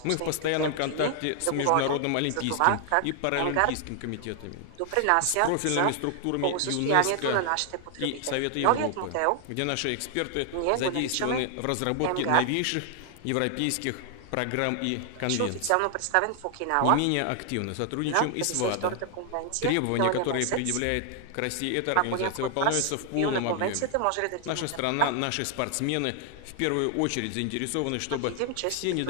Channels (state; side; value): different; both; correlation 0.00